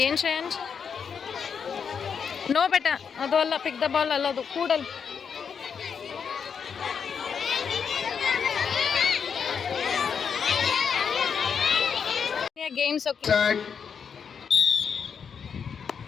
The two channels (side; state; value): right; quieter; 6.7 dB